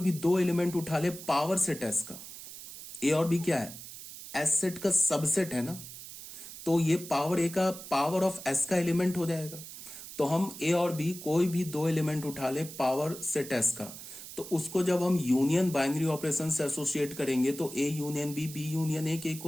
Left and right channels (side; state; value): right; noise; hiss, 13 dB below the sound